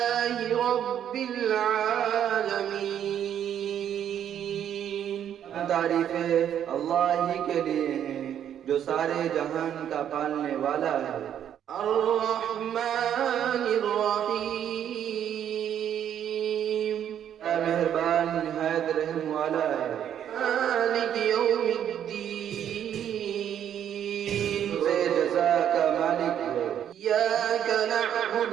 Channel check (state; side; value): quieter; left; 9.7 dB